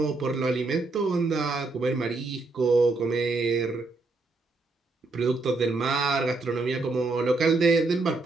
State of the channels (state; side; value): quieter; left; 3.5 dB